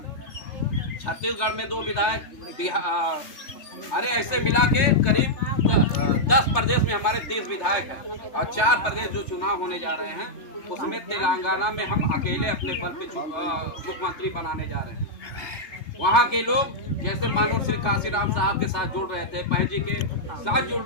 छत्तीसगढ़ में 2 विधायक, अरे ऐसे मिला के करीब 10 प्रदेश में हमारे 30 विधायक हैं। और 4 प्रदेश जो चुनाव होने जा रहे हैं, उसमें तेलंगाना में हम अकेले अपने बल पे मुख्यमंत्री बनाने जा रहे हैं। वहाँ के लोग जैसे मानव श्री काशीराम साहब के साथ जुड़ रहे थे, बहन जी के साथ जुड़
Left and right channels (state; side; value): late; right; 3.3 ms